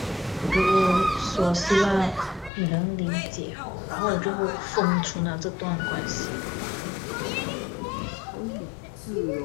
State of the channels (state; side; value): drops out; right; at 2.5 s